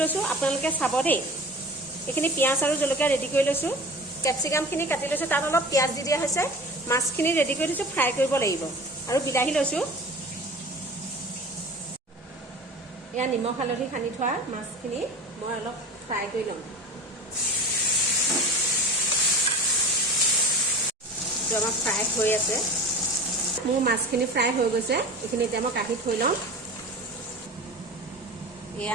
আপোনালোকে চাব দেই। এইখিনি পিঁয়াজ আৰু জলকীয়া ৰেডি কৰি লৈছোঁ। কেপচিকামখিনি কাটি লৈছোঁ, তাত অলপ পিঁয়াজ দি দিয়া হৈছে। মাছখিনি ৰেডি কৰি দিছোঁ, ফ্ৰাই কৰিব লাগিব। আৰু বিলাহী লৈছোঁ। এয়া নিমখ হালধি সানি থোৱা মাছখিনি মই অলপ ফ্ৰাই কৰি ল'ম। আমাৰ ফ্ৰাই হৈ আছে। মোৰ মাছখিনি ফ্ৰাই হৈ গৈছে। এইখিনি এতিয়া মই কাঢ়ি থৈ ল'ম।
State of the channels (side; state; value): both; normal; correlation 0.36